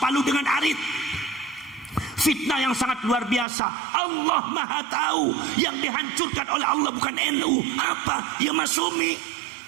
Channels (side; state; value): left; drops out; at 3.5 s